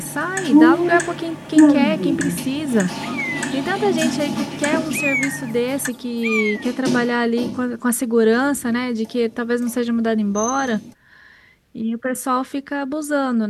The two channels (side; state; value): both; identical; correlation 1.00